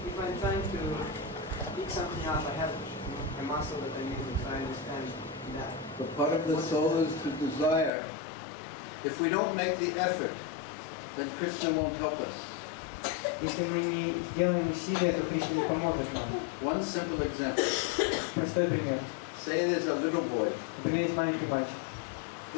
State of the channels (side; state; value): right; drops out; at 7.9 s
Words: if I'm trying to pick something up, I have a muscle that I'm using, so I understand that. But part of the soul is to desire. If we don't make the effort, then Krishna won't help us. Если мы не сделаем усилия, то Кришна не поможет нам. One simple example. Простой пример. Say there's a little boy, Например, есть маленький мальчик,